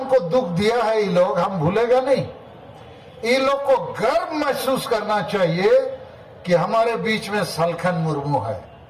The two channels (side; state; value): both; identical; correlation 1.00